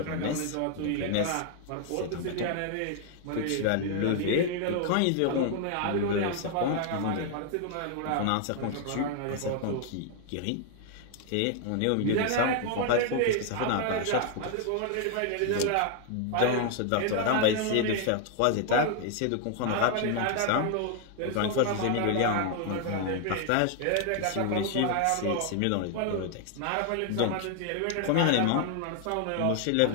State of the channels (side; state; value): both; different; correlation 0.00